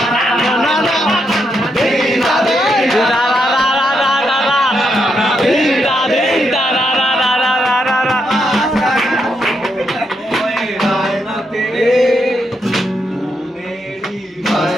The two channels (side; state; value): both; normal; correlation 0.81